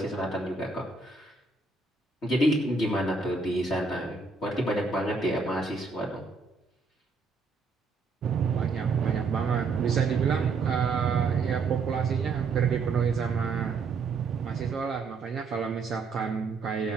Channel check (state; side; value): quieter; left; 4.2 dB